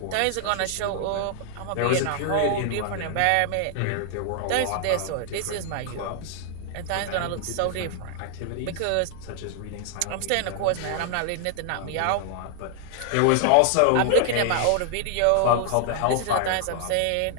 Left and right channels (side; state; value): both; different; correlation 0.00